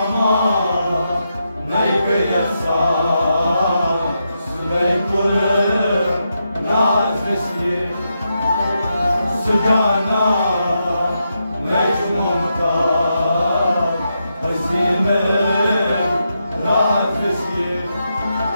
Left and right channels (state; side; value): inverted; both; correlation -0.84